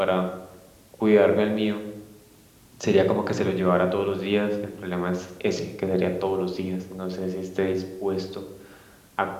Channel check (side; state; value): both; identical; correlation 1.00